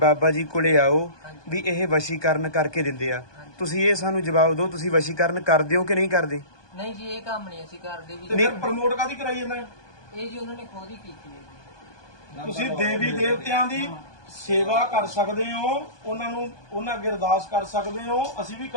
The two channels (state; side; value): late; right; 1.2 ms